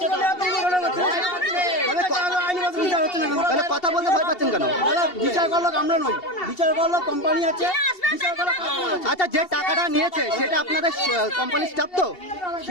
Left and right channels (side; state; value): right; late; 2.7 ms